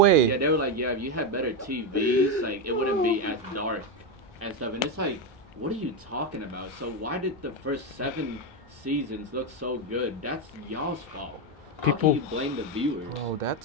Yeah, they were like, yeah, if you had better TVs, like, it wouldn't be as dark and stuff. And it's like, what are you talking about? So why did the first 7 seasons look so good? That's y'all's fault. How People- can you blame the viewers? Bro,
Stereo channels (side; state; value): both; normal; correlation 0.09